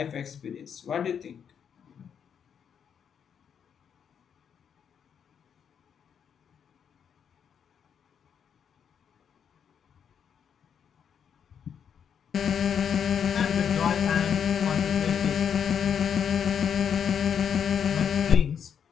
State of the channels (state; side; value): quieter; right; 7.8 dB